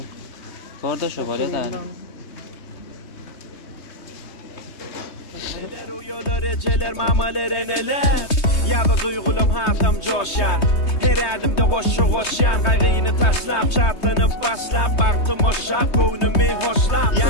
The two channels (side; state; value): right; late; 3.2 ms